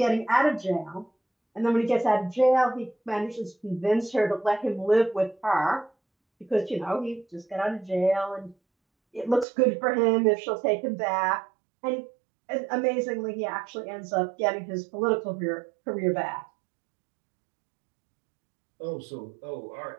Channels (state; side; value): drops out; left; at 9.5 s